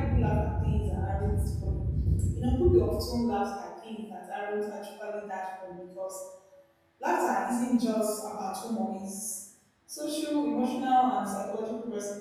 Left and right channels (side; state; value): both; identical; correlation 1.00